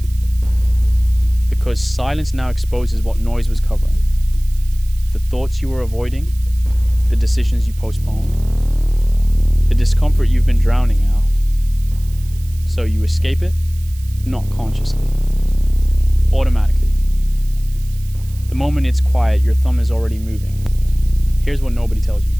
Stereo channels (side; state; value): right; noise; hiss, 22 dB below the sound